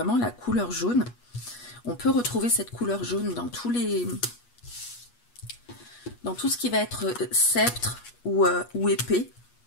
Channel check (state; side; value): late; right; 8.3 ms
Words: la couleur jaune. On peut retrouver cette couleur jaune dans tout ce qui va être sceptre ou épée,